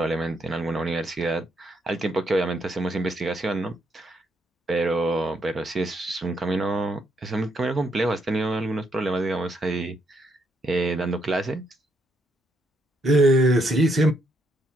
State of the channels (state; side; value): normal; both; correlation 0.75